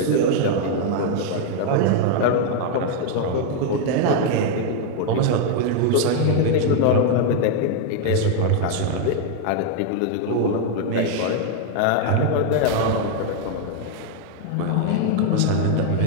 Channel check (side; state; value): both; different; correlation 0.00